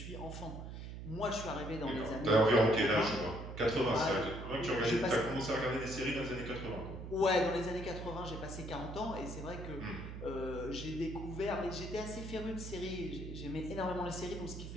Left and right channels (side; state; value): right; noise; hum, 9 dB below the sound